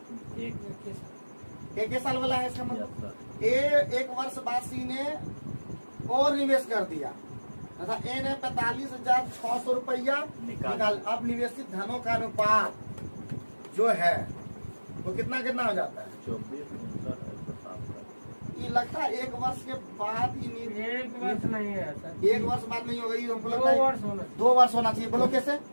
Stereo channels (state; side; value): inverted; both; correlation -1.00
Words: एक साल वाला है इसका मतलब। 1 वर्ष बाद C ने और निवेश कर दिया तथा A ने 45,600 रुपया निकाल। अब निवेशित धनों का अनुपात जो है वो कितना हो जाता है? 24। ये लगता है 1 वर्ष के बाद ही 1 वर्ष नहीं है सर। 1 वर्ष बाद नहीं होगा, ये हमको लगता है 2 वर्ष होना। 2 वर्ष होना चाहिए। बोलो कैसे?